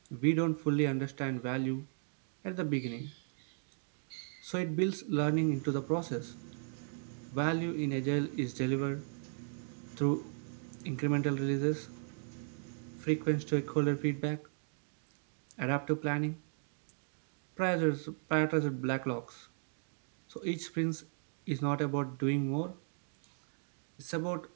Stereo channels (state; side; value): silent; left; digital silence